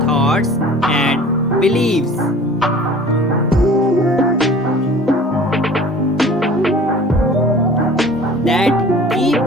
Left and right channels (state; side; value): normal; both; correlation 0.45